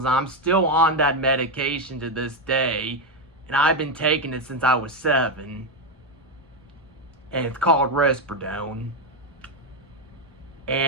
I'm still on that medication to this day, and I've been taking it since I was 7. And it's called Risperidone.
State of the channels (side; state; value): both; normal; correlation 0.07